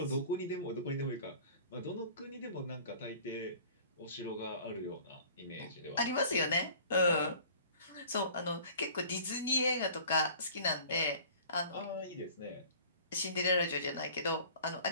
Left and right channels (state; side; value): inverted; both; correlation -0.47